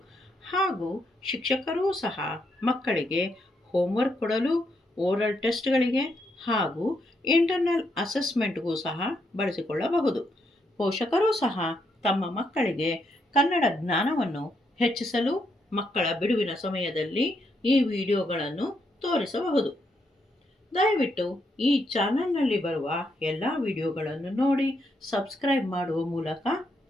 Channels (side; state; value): both; normal; correlation 0.78